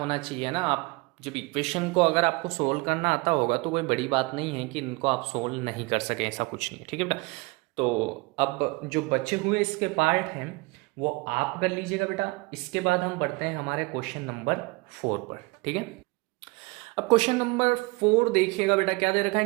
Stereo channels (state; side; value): quieter; left; 25.7 dB